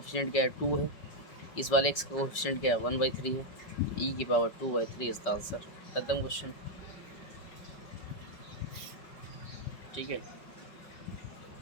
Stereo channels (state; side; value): late; right; 5.3 ms